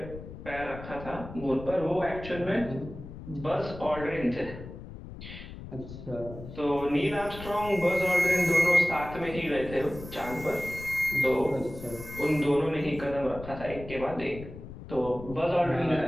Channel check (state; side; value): noise; left; rumble, 12 dB below the sound